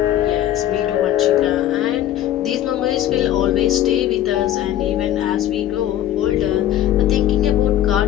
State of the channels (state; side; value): quieter; right; 12.3 dB